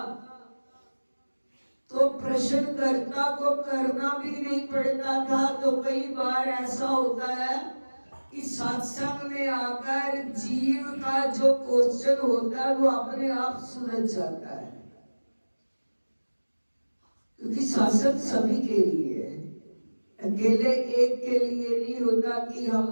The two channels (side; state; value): both; inverted; correlation -1.00